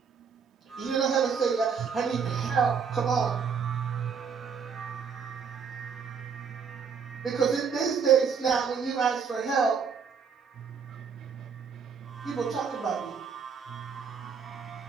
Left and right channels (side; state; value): left; quieter; 6.2 dB